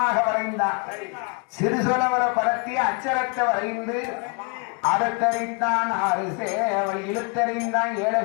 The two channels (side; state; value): right; quieter; 34.6 dB